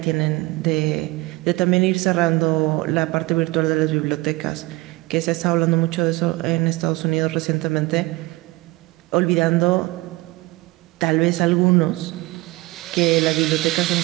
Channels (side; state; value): left; quieter; 21.5 dB